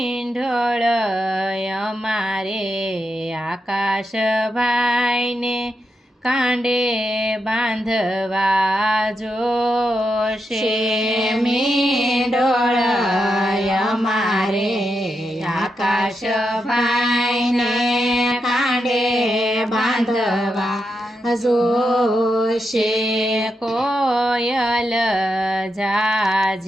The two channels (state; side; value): normal; both; correlation 0.85